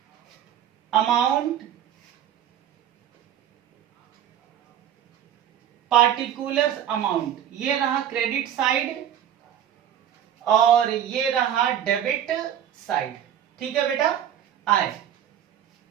अमाउंट, पार्टिकुलर्स अमाउंट, ये रहा क्रेडिट साइड और ये रहा डेबिट साइड। ठीक है बेटा। आए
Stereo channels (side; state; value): left; quieter; 10.1 dB